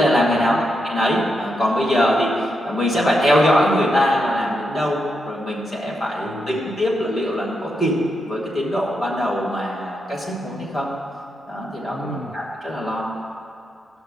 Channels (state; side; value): normal; both; correlation 0.83